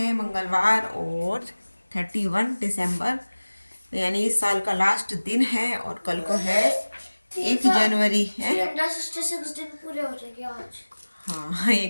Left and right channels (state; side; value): inverted; both; correlation -1.00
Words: मंगलवार और 31 दिसंबर, यानी इस साल का लास्ट दिन है और कल को है 1 जनवरी है। 366 दिन पूरे हो जाएंगे आज। हाँ, ये